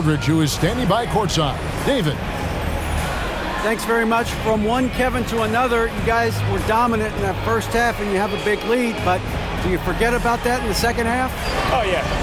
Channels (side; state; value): both; identical; correlation 1.00